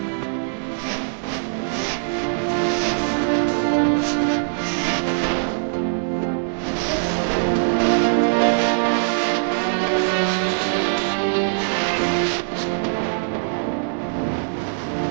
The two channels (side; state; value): left; silent; digital silence